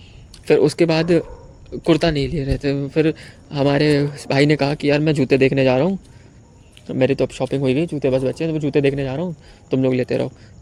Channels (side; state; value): both; identical; correlation 1.00